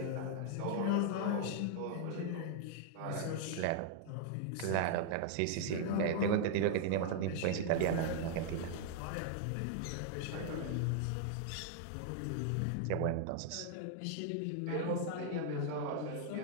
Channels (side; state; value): both; different; correlation 0.00